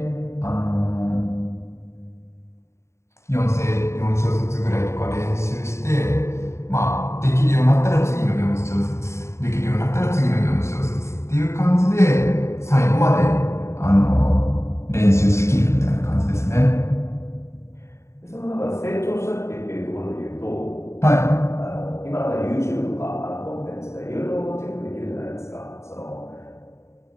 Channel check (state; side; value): late; right; 0.13 ms